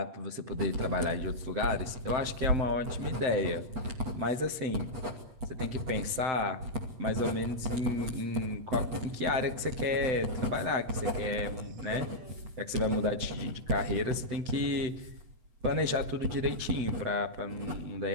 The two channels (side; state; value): left; late; 7.8 ms